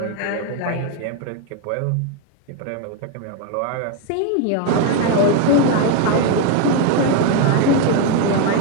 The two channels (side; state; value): both; different; correlation 0.02